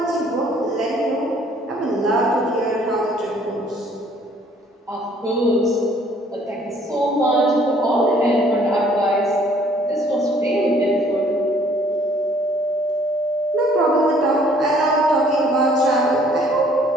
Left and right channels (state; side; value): normal; both; correlation 0.60